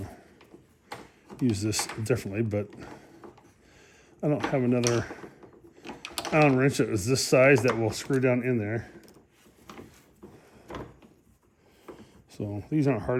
use this differently, but I don't have another Allen wrench that is this size that will screw down in there. So these aren't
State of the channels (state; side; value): identical; both; correlation 1.00